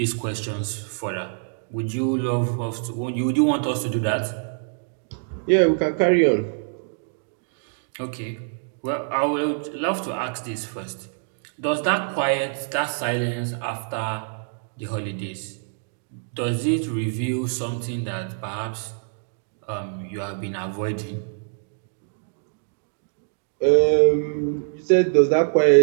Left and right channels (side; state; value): left; silent; digital silence